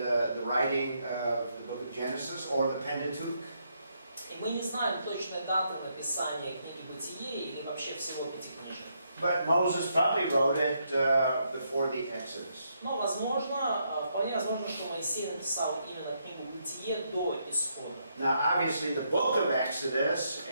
writing of the book of Genesis or the Pentateuch. И мы не знаем точной даты написания книги Бытие или вообще всего Пятикнижия. But Moses probably wrote it before the Exodus. Но вполне возможно, что Моисей написал именно книгу Бытие до Исхода. Now, obviously, the book of Exodus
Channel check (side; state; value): both; inverted; correlation -0.77